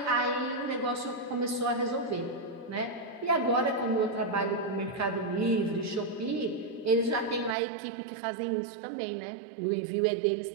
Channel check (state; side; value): drops out; left; at 7.6 s